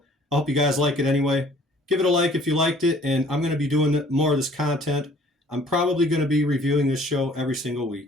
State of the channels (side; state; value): both; normal; correlation 0.55